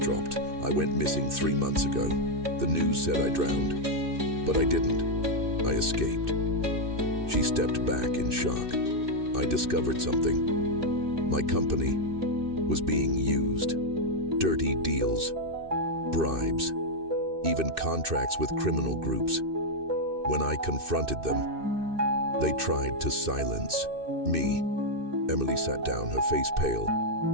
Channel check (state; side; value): late; left; 2.6 ms